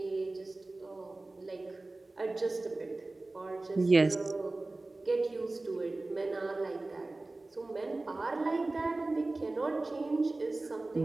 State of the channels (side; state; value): left; quieter; 3.1 dB